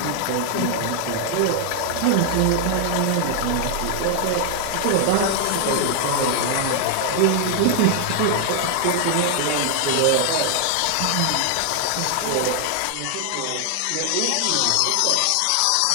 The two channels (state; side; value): different; both; correlation 0.00